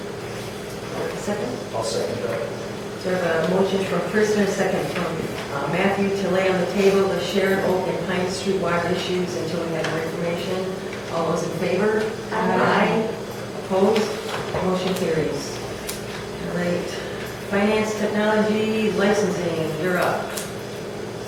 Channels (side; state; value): both; identical; correlation 1.00